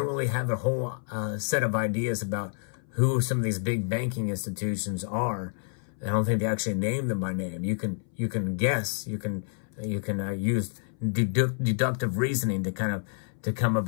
really have a whole set of ideas about who some of these big banking institutions are. I don't think they actually name them by name. You can guess. You can use deductive reasoning to come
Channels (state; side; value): silent; right; 59 dB below the other